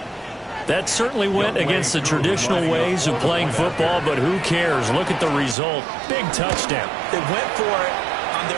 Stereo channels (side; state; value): left; drops out; at 5.6 s